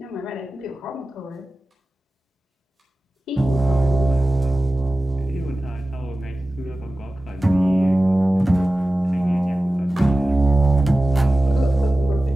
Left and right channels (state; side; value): normal; both; correlation 0.96